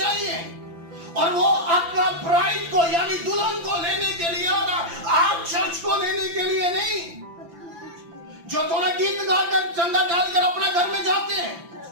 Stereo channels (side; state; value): left; late; 5.9 ms